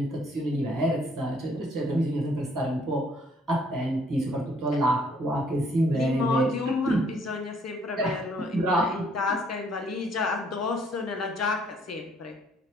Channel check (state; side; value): normal; both; correlation 0.64